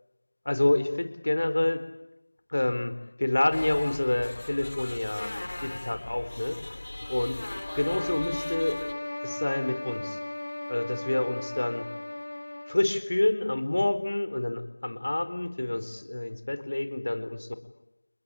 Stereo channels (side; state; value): both; inverted; correlation -1.00